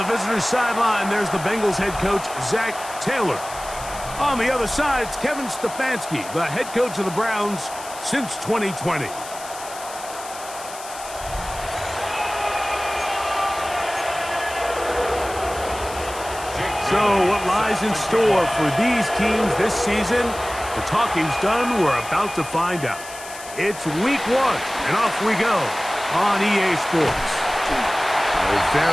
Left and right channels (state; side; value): noise; left; hiss, 14 dB below the sound